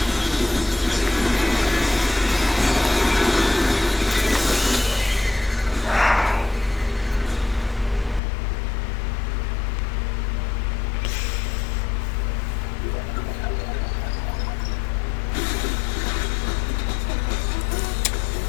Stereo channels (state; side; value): drops out; right; at 8.2 s